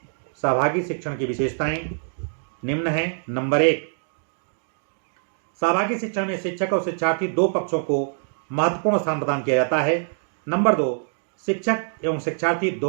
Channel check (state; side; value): silent; left; 62 dB below the other